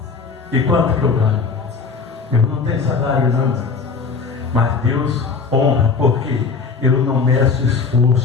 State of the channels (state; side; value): quieter; right; 5.0 dB